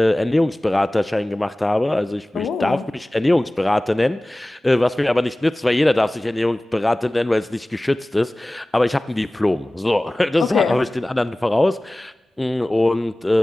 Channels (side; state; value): both; normal; correlation 0.98